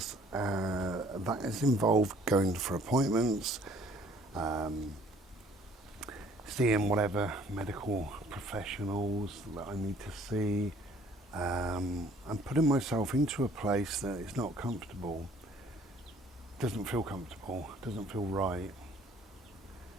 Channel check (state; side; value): normal; both; correlation 0.57